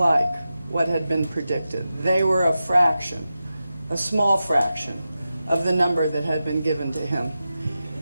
what had been predicted. They were a fraction, a small fraction, of the number that had been given to him.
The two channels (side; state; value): both; inverted; correlation -0.92